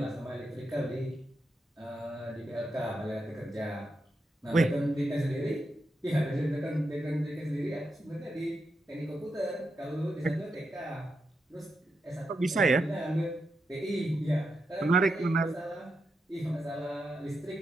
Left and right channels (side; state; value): both; normal; correlation 0.85